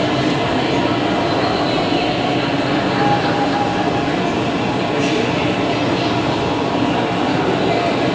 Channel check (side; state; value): both; identical; correlation 1.00